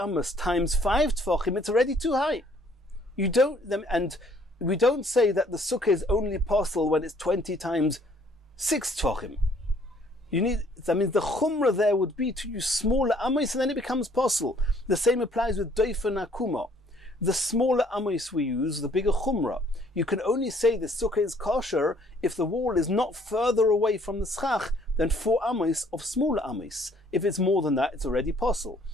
times 5 tfachim, it's already too high. We don't say that the sukkah is only possible when it's 20 times 6 tfachim. That means the chumrah there would be to use smaller amos, and then it becomes possible. The same applies with doifa nakuma. The smaller amos we use, the bigger chumrah. You can only say the sukkah is kosher if the wall is not further away from the schach than 4 amos of smaller amos. If it's more than that, it's already possible.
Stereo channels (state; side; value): normal; both; correlation 0.62